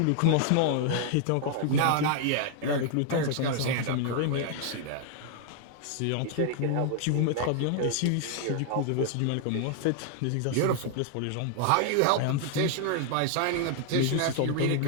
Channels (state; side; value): different; both; correlation 0.00